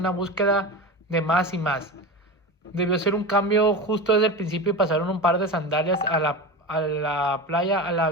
búsqueda de más y más. Debió ser un cambio justo desde el principio y pasaron un par de sandalias a la playa, a la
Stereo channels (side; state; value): both; normal; correlation 0.26